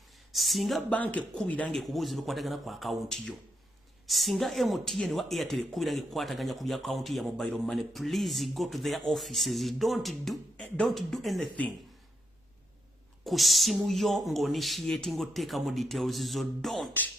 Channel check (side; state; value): both; normal; correlation 0.81